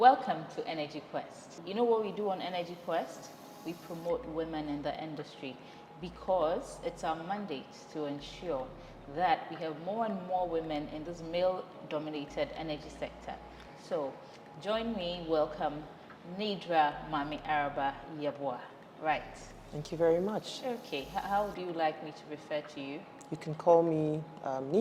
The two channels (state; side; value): identical; both; correlation 1.00